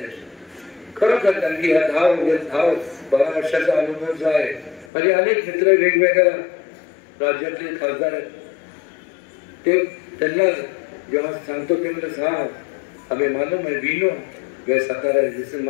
आहे. खरोखर कारण की ह्या 10-12 वर्षाचा अनुभव जो आहे, म्हणजे अनेक मित्र वेगवेगळ्या राज्यातले खासदार आहेत, ते त्यांना जेव्हा सांगतो ते म्हणजे हा हमें मालूम है, वी नो वे सातारा जैसे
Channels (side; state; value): right; drops out; at 4.9 s